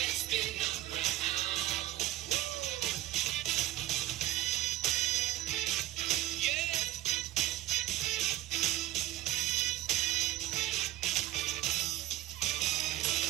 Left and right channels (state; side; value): quieter; left; 15.1 dB